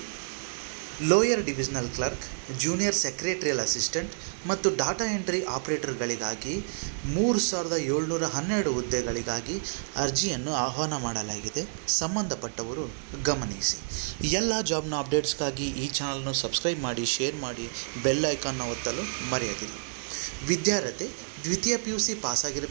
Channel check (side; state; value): left; silent; digital silence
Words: lower divisional clerk, junior secretarial assistant ಮತ್ತು data entry ಆಪರೇಟರ್ಗಳಿಗಾಗಿ 3712 ಹುದ್ದೆಗಳಿಗಾಗಿ ಅರ್ಜಿಯನ್ನು ಆಹ್ವಾನ ಮಾಡಲಾಗಿದೆ. ಸಂಬಂಧಪಟ್ಟವರು ಗಮನಿಸಿ. ಎಲ್ಲ ಜಾಬ್ನ ಅಪ್ಡೇಟ್ಸ್ಗಾಗಿ ಈ ಚಾನಲ್ನ ಸಬ್ಸ್ಕ್ರೈಬ್ ಮಾಡಿ, ಶೇರ್ ಮಾಡಿ, ಬೆಲ್ ಐಕಾನ್ನ ಒತ್ತಲು ಮರೆಯದಿರಿ. ವಿದ್ಯಾರ್ಹತೆ ದ್ವಿತೀಯ PUC